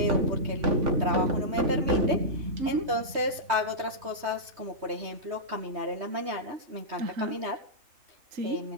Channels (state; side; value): late; left; 3.2 ms